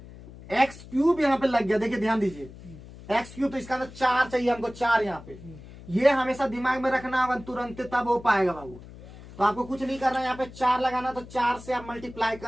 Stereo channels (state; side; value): noise; left; hum, 17 dB below the sound